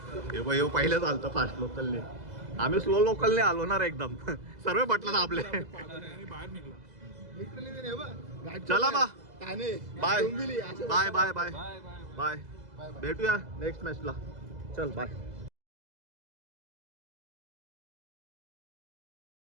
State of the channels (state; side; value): late; left; 2.0 ms